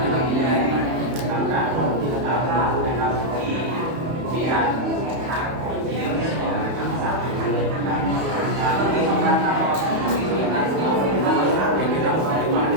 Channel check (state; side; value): late; left; 31 ms